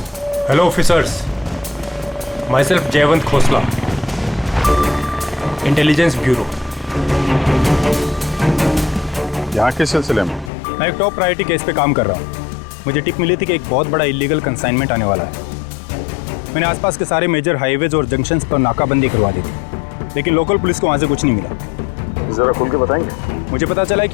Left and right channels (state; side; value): drops out; right; at 10.5 s